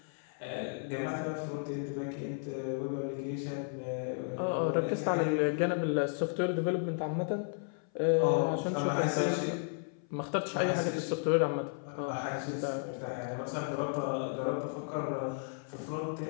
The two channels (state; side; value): silent; right; 55 dB below the other